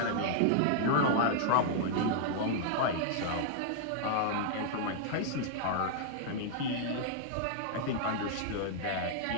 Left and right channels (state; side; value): different; both; correlation -0.01